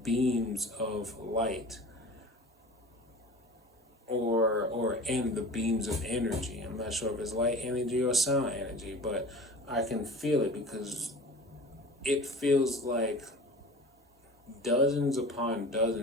beams of light or in the beams of energy. I'm not sure if it's light energy or sound energy, but I can feel it because it feels like dozens upon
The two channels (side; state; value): both; normal; correlation 0.39